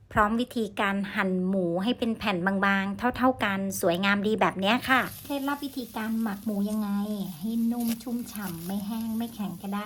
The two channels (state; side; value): identical; both; correlation 1.00